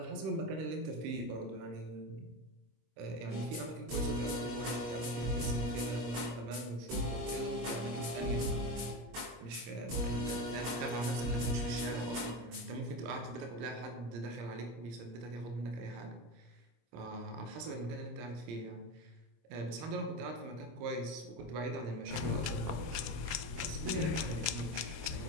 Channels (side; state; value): left; late; 26 ms